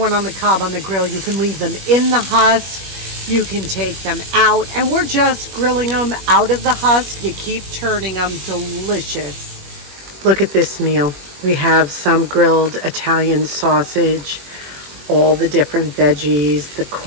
on the cob on the grill. You can leave them in the husk. You can take them out. And we're just grilling them out of the husk. You keep turning them. Delicious. Look at this meal. We have some grilled Italian sausage, all the different veggies, the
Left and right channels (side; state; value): left; late; 21 ms